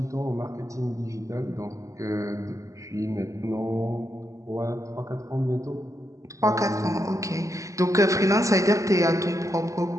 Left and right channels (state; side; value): late; left; 0.16 ms